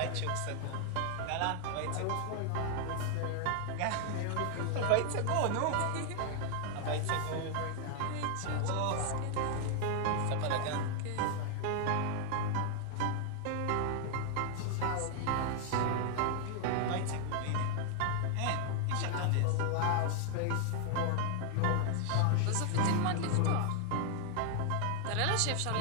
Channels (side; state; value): both; different; correlation 0.00